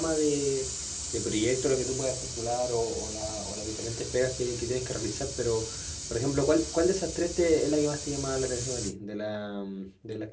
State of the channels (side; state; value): both; identical; correlation 1.00